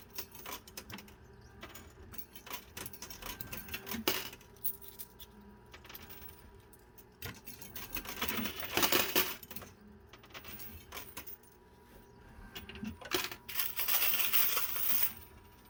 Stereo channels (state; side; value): identical; both; correlation 1.00